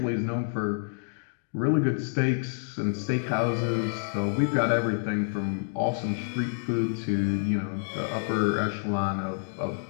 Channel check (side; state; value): right; silent; digital silence